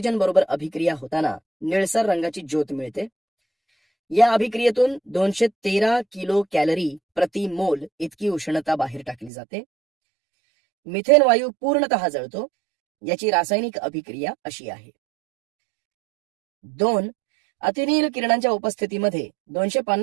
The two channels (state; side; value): drops out; left; at 9.3 s